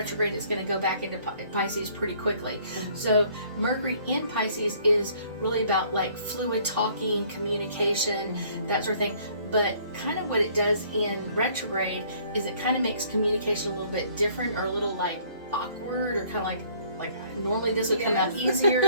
it's going to go back into Pisces pretty quickly. So Mercury in Pisces is really about like fluid talking, communication, that sort of thing. But kind of what it does in retrograde is it kind of makes communication a little bit different, or a little like awkward, or kind of like normally this would come out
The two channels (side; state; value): both; inverted; correlation -0.59